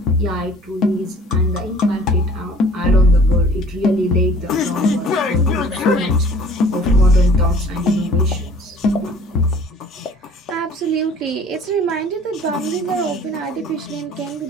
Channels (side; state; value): both; normal; correlation 0.50